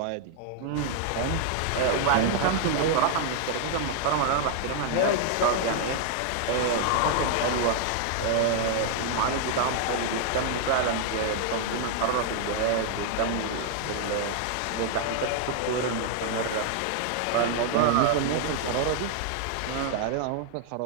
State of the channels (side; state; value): both; different; correlation -0.01